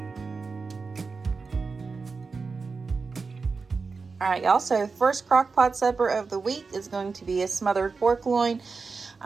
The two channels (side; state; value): left; quieter; 4.6 dB